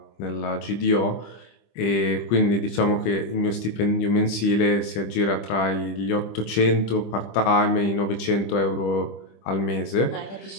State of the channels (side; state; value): right; late; 25 ms